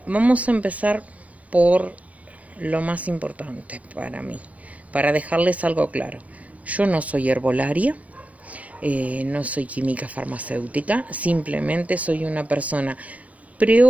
vamos a empezar por lo más importante para mí, para dejarles algo claro. Yo no soy herbolaria. No soy química farmacéutica, simplemente soy una persona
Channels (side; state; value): left; late; 0.067 ms